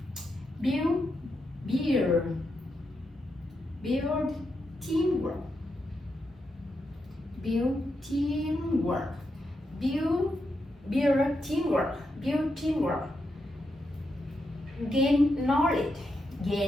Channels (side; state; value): both; normal; correlation 0.84